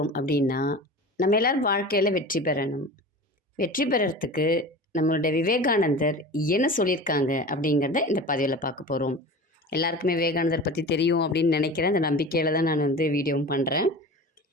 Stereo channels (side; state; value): both; normal; correlation 0.34